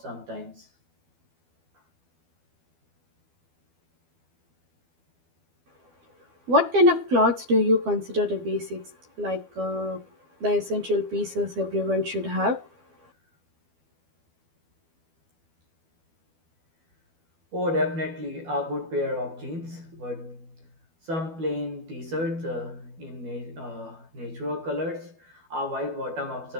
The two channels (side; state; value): left; late; 12 ms